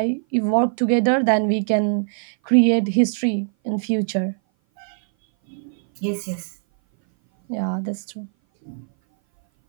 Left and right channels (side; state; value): left; silent; 58 dB below the other